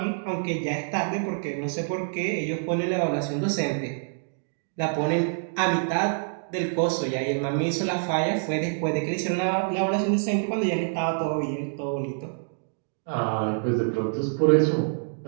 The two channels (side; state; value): left; silent; digital silence